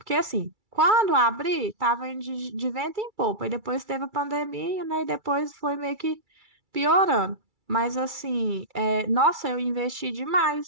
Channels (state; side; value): late; left; 2.3 ms